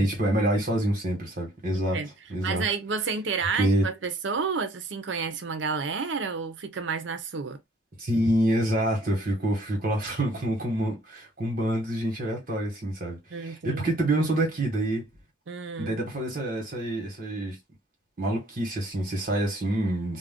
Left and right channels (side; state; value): both; normal; correlation 0.59